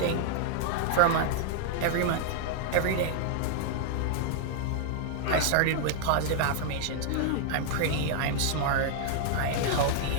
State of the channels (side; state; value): both; different; correlation 0.00